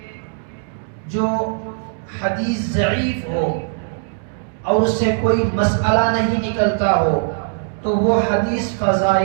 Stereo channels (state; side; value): silent; left; digital silence